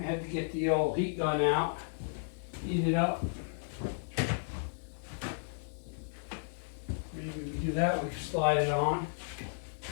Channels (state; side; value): silent; right; digital silence